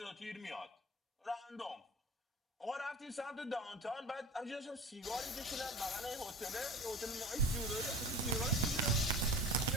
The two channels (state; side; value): normal; both; correlation 0.36